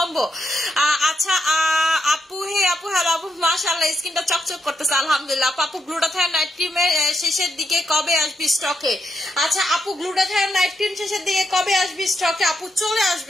আচ্ছা আপু, হে আপু, হ্যালো আপু, মাশাআল্লাহ স্কিনটা চকচক করতেছে আলহামদুলিল্লাহ। আপু গ্লুটাথায়ন নাইট ক্রিমের শেষের দিকে কবে আসবি স্টকে? আচ্ছা আপু গ্লুটাথায়ন নাইট ক্রিম শেষের দিকে কবে আসবি স্টকে? আপু চলে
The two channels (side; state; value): both; normal; correlation 0.81